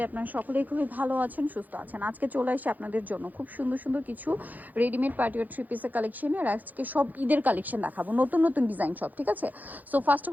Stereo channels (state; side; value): late; left; 0.082 ms